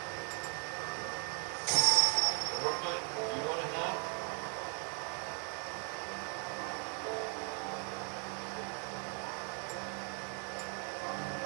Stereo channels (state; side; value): quieter; left; 38.7 dB